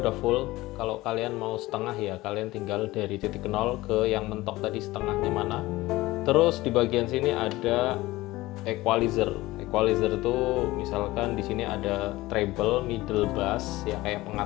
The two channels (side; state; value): right; quieter; 18.8 dB